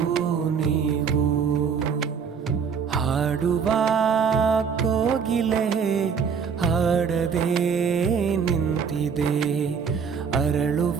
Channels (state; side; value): quieter; left; 6.4 dB